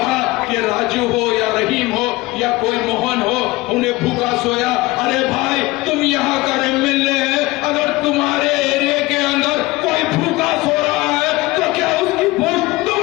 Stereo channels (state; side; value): quieter; right; 20.7 dB